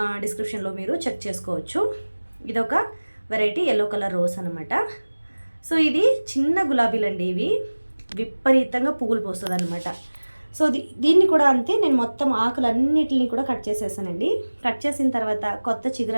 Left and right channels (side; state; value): both; inverted; correlation -1.00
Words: డిస్క్రిప్షన్లో మీరు చెక్ చేసుకోవచ్చు. ఇదొక వెరైటీ ఎల్లో కలర్ రోజ్ అనమాట. సో ఇది చిన్న గులాబీలండి. ఇవి విపరీతంగా పువ్వులు పోస్తుంది అనమాట. సో దీన్ని కూడా అంతే, నేను మొత్తం ఆకులన్నిటిని కూడా కట్ చేసేసానండి. కట్ చేసిన తర్వాత కొత్త